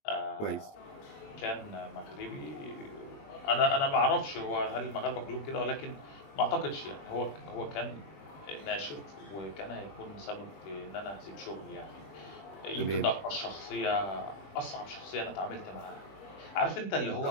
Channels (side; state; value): right; late; 21 ms